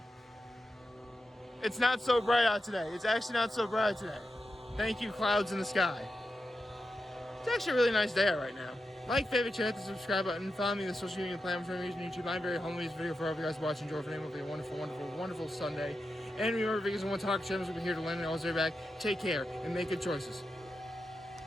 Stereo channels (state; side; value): normal; both; correlation 0.89